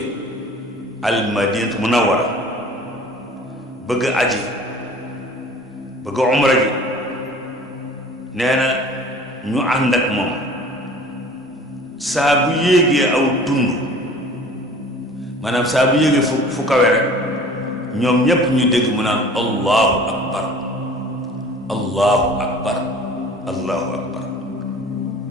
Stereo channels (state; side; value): normal; both; correlation 0.46